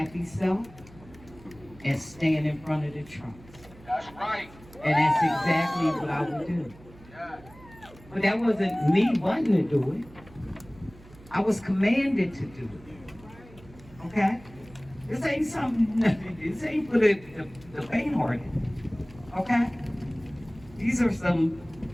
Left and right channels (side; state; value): right; noise; hum, 22 dB below the sound